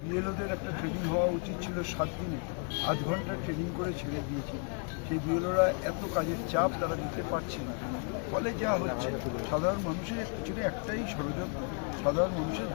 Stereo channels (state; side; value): quieter; right; 39.4 dB